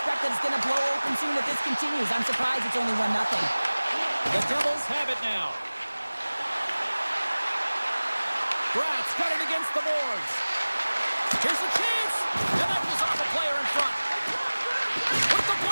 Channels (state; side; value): inverted; both; correlation -1.00